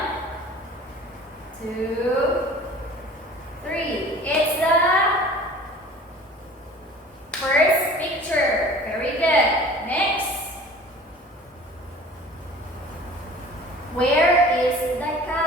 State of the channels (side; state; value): both; normal; correlation 0.44